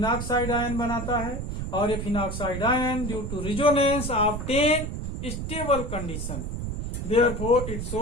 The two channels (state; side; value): noise; right; rumble, 4 dB below the sound